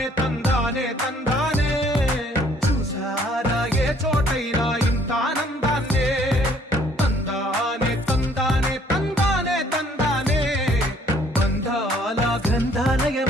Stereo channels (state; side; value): normal; both; correlation 0.61